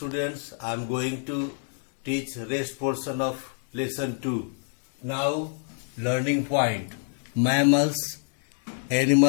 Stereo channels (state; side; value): silent; right; digital silence